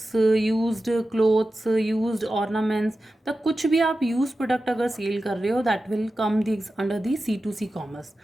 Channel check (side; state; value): both; normal; correlation 0.93